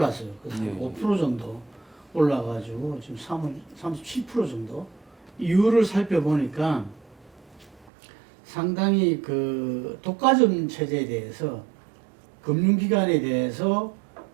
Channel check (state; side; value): drops out; left; at 7.9 s